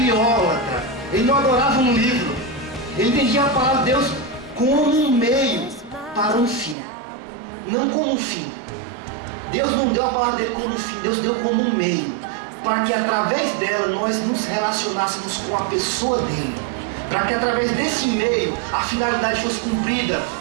ele não adorava um livro, ele entendia a palavra de Deus como um meio para um fim, não como um fim. Deus não deu a palavra dele como um fim, Deus deu como um meio, para que através dela nós nos relacionássemos com a pessoa dele, para que através desse meio a finalidade fosse cumprida,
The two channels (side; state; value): left; drops out; at 6.8 s